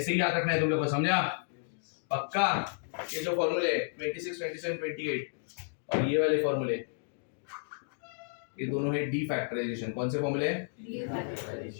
ही याद रखना है तुम लोग को, समझा? पक्का? ये जो फॉर्मूले 26, 27, 28 और ये वाले फॉर्मूले, ये दोनों है डी फैक्टराइजेशन। कौन से फॉर्मूले?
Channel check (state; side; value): silent; right; digital silence